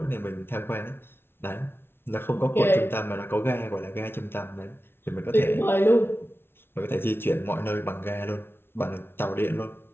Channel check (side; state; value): right; late; 0.11 ms